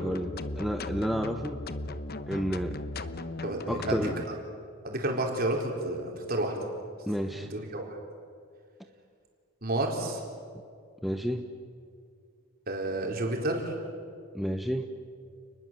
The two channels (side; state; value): both; normal; correlation 0.48